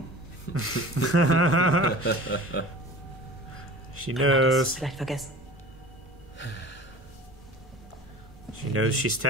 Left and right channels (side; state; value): both; normal; correlation 0.39